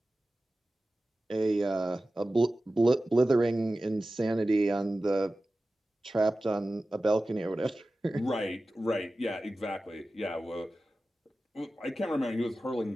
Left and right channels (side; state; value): both; normal; correlation 0.95